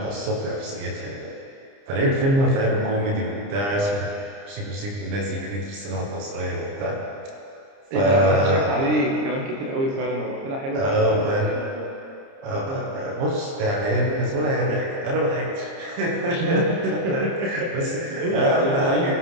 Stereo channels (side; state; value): left; late; 30 ms